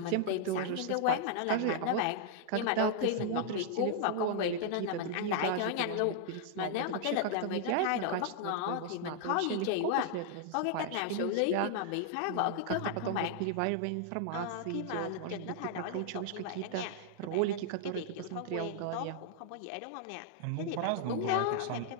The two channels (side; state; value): both; different; correlation -0.01